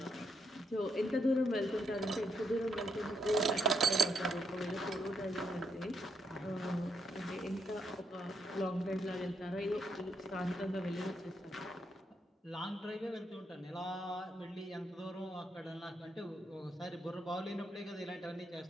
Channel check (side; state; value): both; normal; correlation 0.77